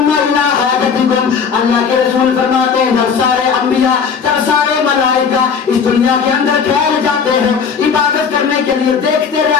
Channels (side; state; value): right; quieter; 6.3 dB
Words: الی حاجتکم اللہ کے رسول فرماتے ہیں جب سارے انبیاء جب سارے ملائکہ اس دنیا کے اندر ٹھہر جاتے ہیں عبادت کرنے کے لیے دیکھتے